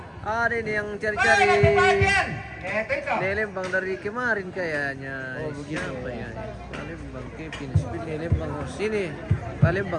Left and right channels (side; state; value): both; identical; correlation 1.00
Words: Ada ini yang Para cari-cari kebagian. Itu. di Lembang dari kemarin kayaknya. Oh begitu. Siapa ya? Lembang, Kevin, Spill di Lembang. Oh, sini,